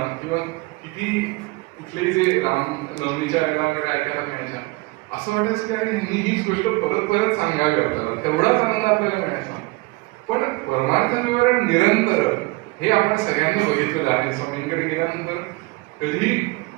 किंवा किती कुठलेही जे रामनवमीच्या वेळेला वगैरे ऐकायला मिळायच्या, असं वाटायचं की अरे ह्यांनी हीच गोष्ट परत परत सांगावी आपल्याला, तेवढाच आनंद आपल्याला मिळायचा. पण परमार्थ विवरण निरंतर हे आपण सगळ्यांनी बघितलेलं आहे. स्वामींकडे गेल्यानंतर कधी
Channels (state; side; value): quieter; left; 23.9 dB